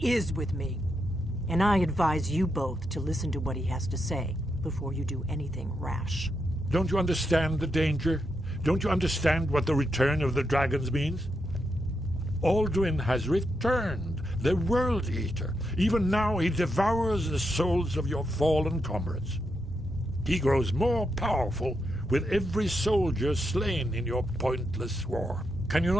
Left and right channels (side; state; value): both; normal; correlation 0.83